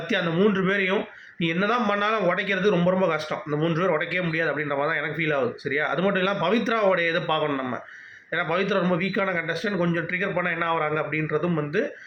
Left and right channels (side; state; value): both; identical; correlation 1.00